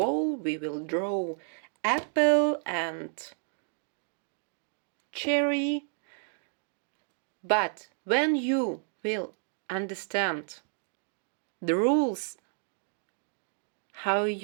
we will draw apple and cherry, but when you will understand the rules, how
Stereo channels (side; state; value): left; silent; 57 dB below the other